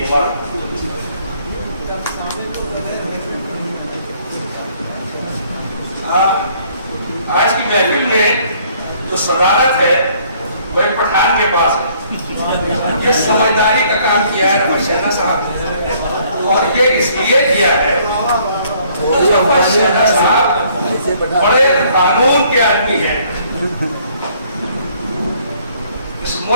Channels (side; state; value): both; inverted; correlation -0.62